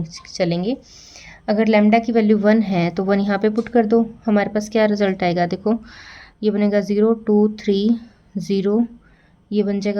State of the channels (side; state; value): both; identical; correlation 1.00